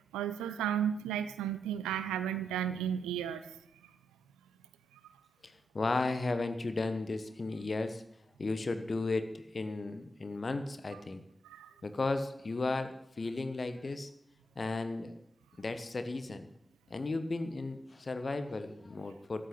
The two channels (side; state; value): both; normal; correlation 0.80